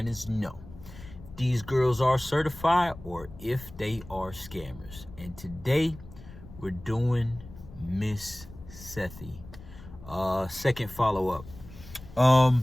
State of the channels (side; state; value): left; noise; rumble, 17 dB below the sound